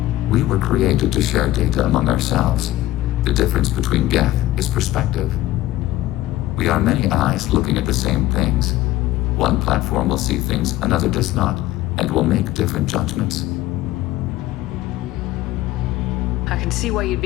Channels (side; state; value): right; quieter; 15.5 dB